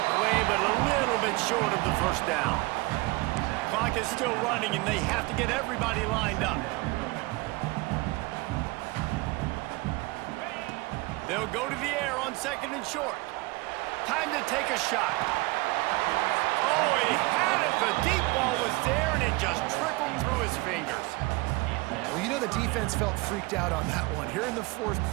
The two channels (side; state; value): left; quieter; 23.4 dB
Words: play, but a little bit short of the 1st down. Clock is still running, and they have to get everybody lined up. They'll go to the air on 2nd and short. Time to take a shot. Oh, he had it. The deep ball was there, and it just trickled through his fingers. Well, you know the defense felt freaked out on that one. Here in the 4th